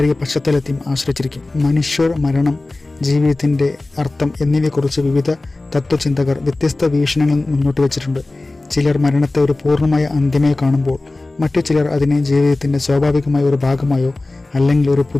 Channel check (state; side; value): quieter; right; 3.1 dB